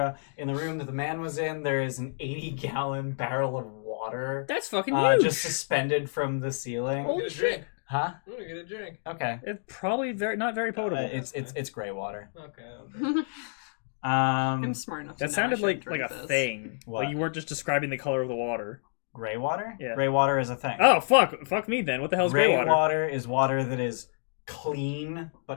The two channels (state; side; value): silent; right; digital silence